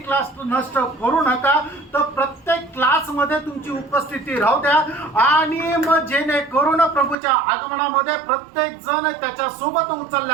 नष्ट करू नका. तर प्रत्येक क्लास मध्ये तुमची उपस्थिती राहू द्या आणि मग जेणेकरून प्रभूच्या आगमनामध्ये प्रत्येक जण त्याच्या सोबत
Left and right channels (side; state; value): left; drops out; at 7.2 s